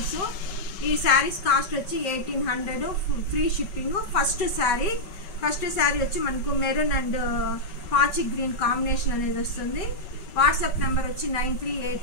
ఈ శారీస్ కాస్ట్ వచ్చి 1800 ఫ్రీ షిప్పింగ్. ఫస్ట్ శారీ వచ్చి మనకు మెరూన్ అండ్ పాచి గ్రీన్ కాంబినేషన్ అనేది వస్తుంది. వాట్సాప్ నెంబర్ వచ్చి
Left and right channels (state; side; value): late; right; 5.3 ms